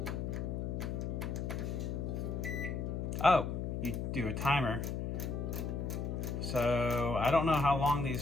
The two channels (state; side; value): noise; left; hum, 2 dB below the sound